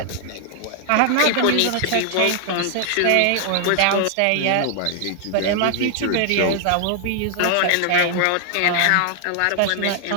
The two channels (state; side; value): different; both; correlation 0.00